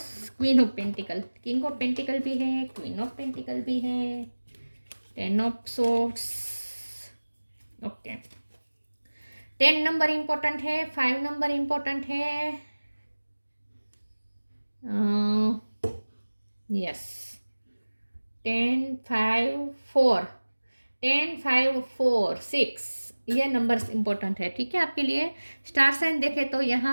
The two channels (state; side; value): inverted; both; correlation -1.00